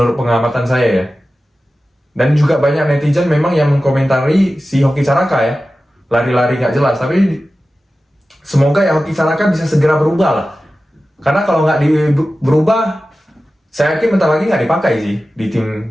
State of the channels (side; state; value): both; normal; correlation 0.95